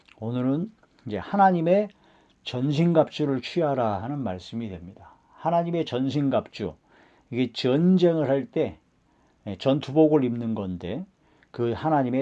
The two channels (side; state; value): both; identical; correlation 1.00